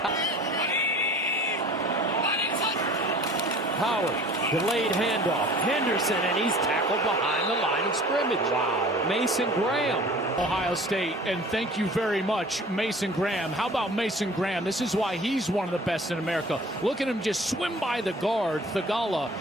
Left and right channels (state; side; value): normal; both; correlation 0.46